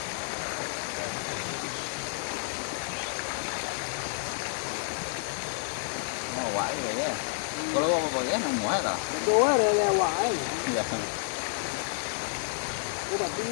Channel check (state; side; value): silent; right; digital silence